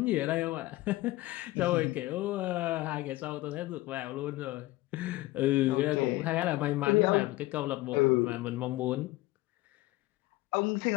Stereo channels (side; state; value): right; quieter; 18.4 dB